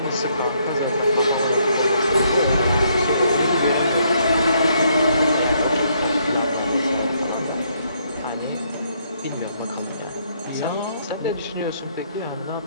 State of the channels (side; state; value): both; inverted; correlation -0.71